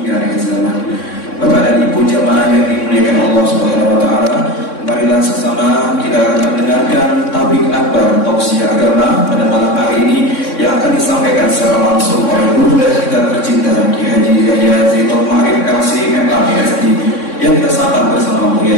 akhir zaman. Bapak dan Ibu jamaah yang dimuliakan Allah Subhanahu wa Ta'ala, marilah sesama kita akan mendengarkan Tabligh Akbar tausiah agama pada malam hari ini yang akan disampaikan secara langsung oleh guru kita tercinta Ki Haji Yahya Zainul Ma'arif LC MAPSD yang kita sapa bersama Buya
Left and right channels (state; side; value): late; right; 3.6 ms